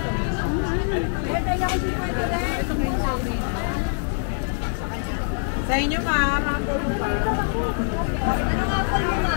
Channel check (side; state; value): right; silent; digital silence